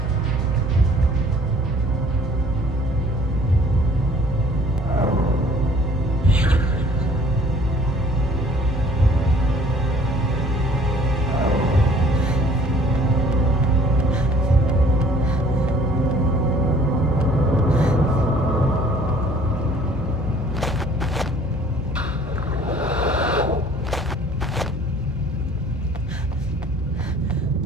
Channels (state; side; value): normal; both; correlation 0.54